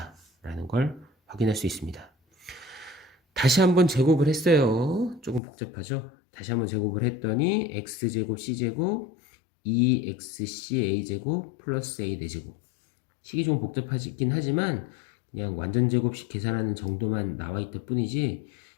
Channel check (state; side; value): drops out; right; at 5.4 s